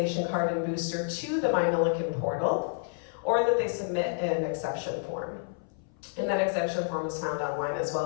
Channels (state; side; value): silent; right; 57 dB below the other